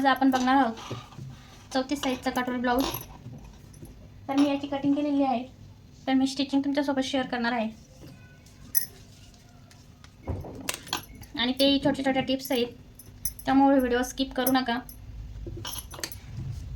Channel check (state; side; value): identical; both; correlation 1.00